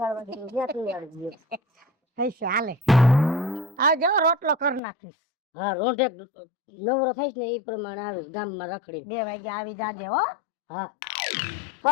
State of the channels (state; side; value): drops out; right; at 4.8 s